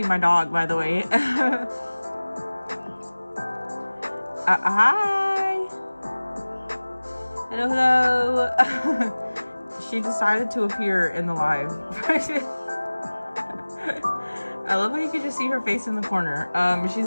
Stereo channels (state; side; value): inverted; both; correlation -1.00